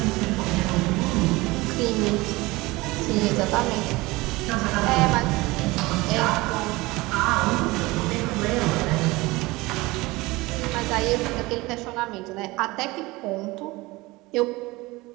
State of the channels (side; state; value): left; quieter; 21.5 dB